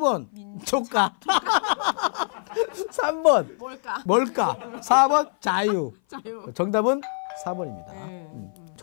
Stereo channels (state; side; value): silent; right; 57 dB below the other